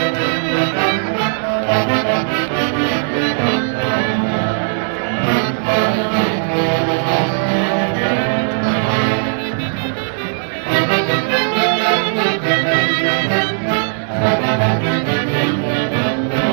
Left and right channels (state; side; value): silent; left; digital silence